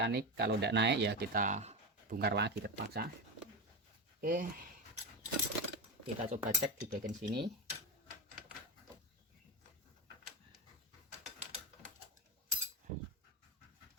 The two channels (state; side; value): normal; both; correlation 0.18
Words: Kalau tidak naik ya kita bongkar lagi terpaksa. Oke, kita coba cek di bagian sini.